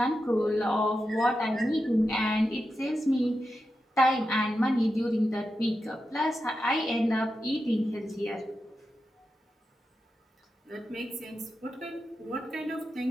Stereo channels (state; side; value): normal; both; correlation 0.89